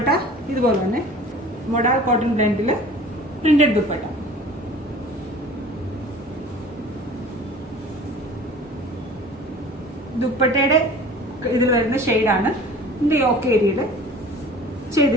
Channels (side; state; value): both; normal; correlation 0.44